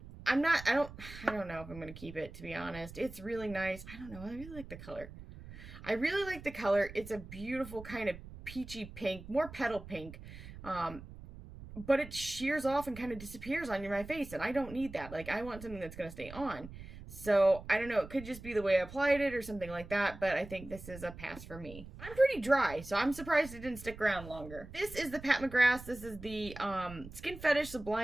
I don't know if I'm going to keep it, to be honest. It's really nice. I don't know. I really like the color. It's a beautiful kind of peachy pink, more petal pink. But it shears off and kind of disappears on my face, and I don't need that. Like, I want something that's going to stay on. So, I don't know. It could just be the way I applied it or something like that, but I think this is a pass for me. I'm pretty dry, so I'm surprised it didn't stick around longer. This is the Pat McGrath. This is the Skin Fetish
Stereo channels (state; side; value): noise; right; rumble, 14 dB below the sound